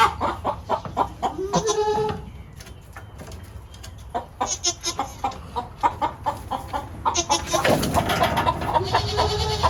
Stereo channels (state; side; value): identical; both; correlation 1.00